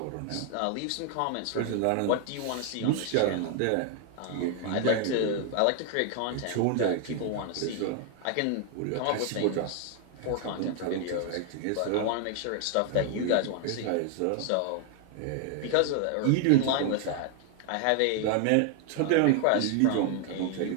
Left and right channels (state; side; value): different; both; correlation 0.00